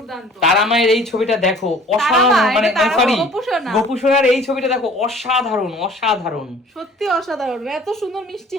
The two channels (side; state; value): both; normal; correlation 0.51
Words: তারা মায়ের এই ছবিটা দেখো, তারা অসাধারণ, মা, মানে এটা তারা মা, সরি গোপুসোনা। গোপুসোনার এই ছবিটা দেখো, অসাধারণ অসাধারণ সত্যি অসাধারণ, এত সুন্দর মিষ্টি